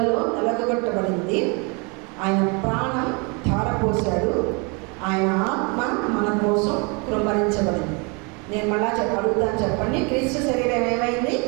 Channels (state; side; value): quieter; left; 31.7 dB